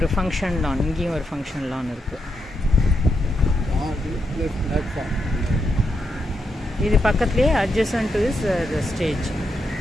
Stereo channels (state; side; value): normal; both; correlation 0.83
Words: ஃபங்க்ஷன் லான், இங்கேயும் ஒரு ஃபங்க்ஷன் லான் இருக்குது. இது பக்கத்துலேயே adjacent to is the stage,